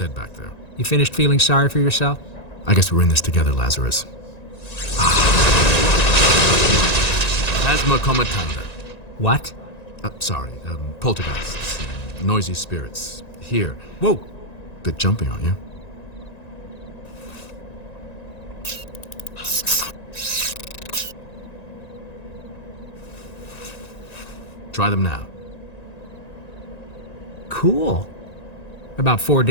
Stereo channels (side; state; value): right; late; 1.9 ms